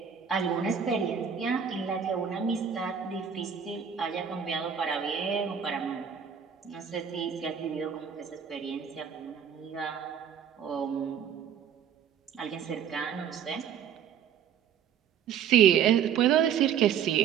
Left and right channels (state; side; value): quieter; left; 8.1 dB